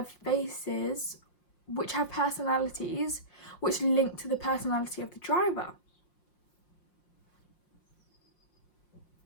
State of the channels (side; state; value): right; late; 5.6 ms